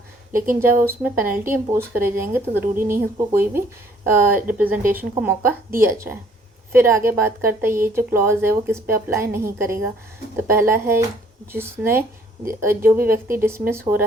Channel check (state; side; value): normal; both; correlation 0.60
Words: लेकिन जब उसमें पेनल्टी इम्पोज करे जाएंगे तो ज़रूरी नहीं है उसको कोई भी रिप्रेजेंटेशन का मौका दिया जाए। फिर आगे बात करता है ये जो क्लॉज है वो किस पे अप्लाई नहीं करेगा। तो पहला है जिसने जो भी व्यक्ति डिसमिस हो